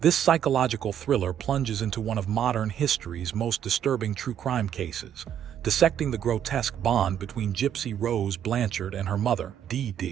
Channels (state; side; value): quieter; left; 9.7 dB